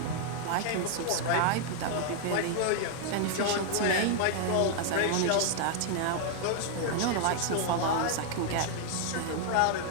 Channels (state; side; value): different; both; correlation 0.00